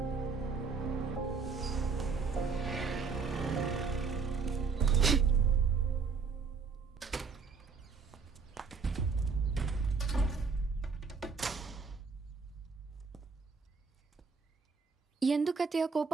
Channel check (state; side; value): quieter; left; 5.0 dB